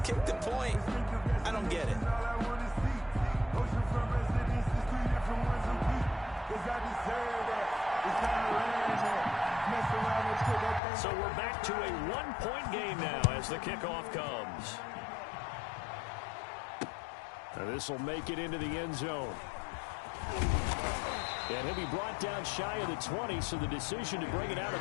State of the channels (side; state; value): right; drops out; at 10.8 s